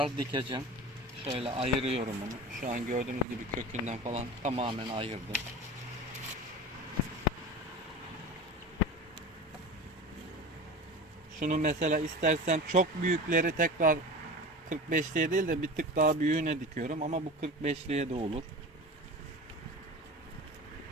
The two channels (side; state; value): both; normal; correlation 0.33